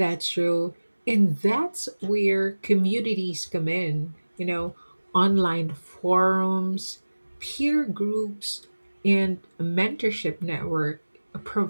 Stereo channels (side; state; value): both; inverted; correlation -1.00